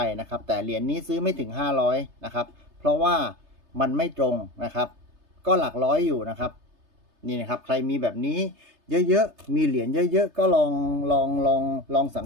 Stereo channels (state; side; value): late; left; 3.3 ms